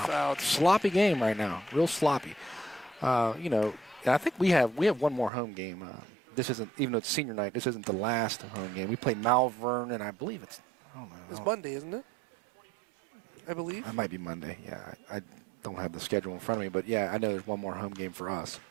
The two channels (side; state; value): left; drops out; at 5.3 s